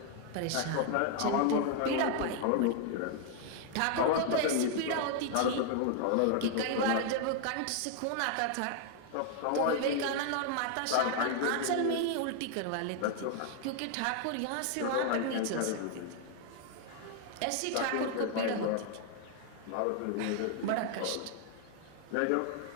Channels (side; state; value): both; different; correlation 0.00